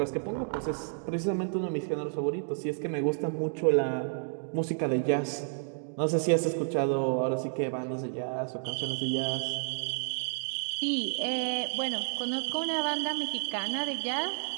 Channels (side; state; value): left; silent; digital silence